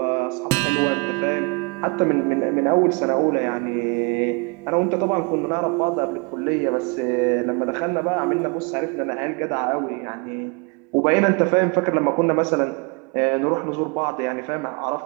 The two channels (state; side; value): quieter; left; 32.2 dB